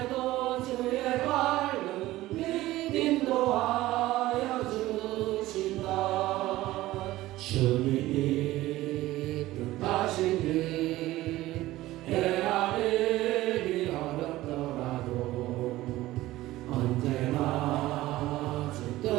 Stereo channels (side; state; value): left; quieter; 16.8 dB